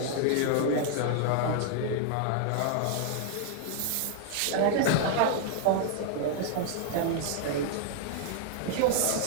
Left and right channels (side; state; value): both; different; correlation 0.00